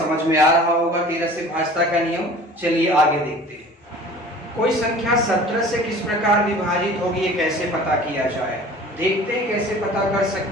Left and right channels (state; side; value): normal; both; correlation 0.44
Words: में आ रहा होगा 13 से भाज्यता का नियम। चलिए आगे देखते हैं। कोई संख्या 17 से किस प्रकार विभाजित होगी, ये कैसे पता किया जाए। देखते हैं कैसे पता कर